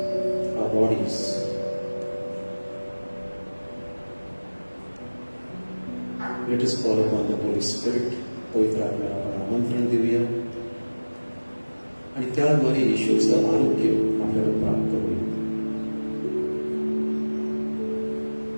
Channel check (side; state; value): both; inverted; correlation -1.00